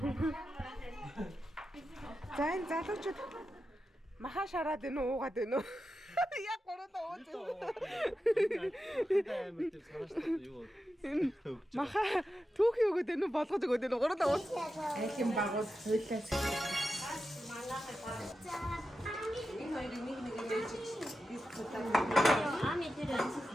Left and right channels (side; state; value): both; normal; correlation 0.90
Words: За энэ залуучууд маха шараад байна уу уугаад байна уу? Яг гуравдаа ууж байна. Маха түүхий өгöd байна уу болгож өгöd байна уу гуравдаа ууж. Айлын багууд хуйлаас. Энэ хоёрыг нэг ээж Ами тэр